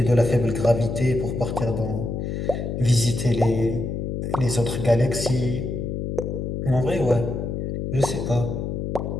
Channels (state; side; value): noise; left; hum, 3 dB below the sound